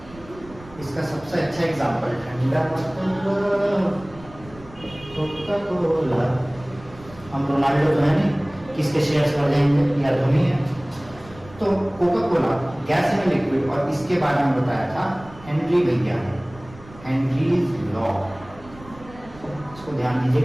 इसका सबसे अच्छा एग्जांपल ठंडा कोका कोला। हम रोनाल्डो तो है नहीं, किसके शेयर्स बढ़ जाएंगे, या धोनी है। तो Coca Cola gas in liquid, और इसके बारे में बताया था हेनरी भैया ने, हेनरीज लॉ। इसको ध्यान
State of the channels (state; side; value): noise; right; rumble, 20 dB below the sound